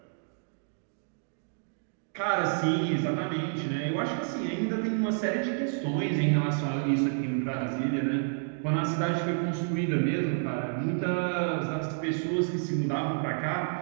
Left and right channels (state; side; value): silent; left; digital silence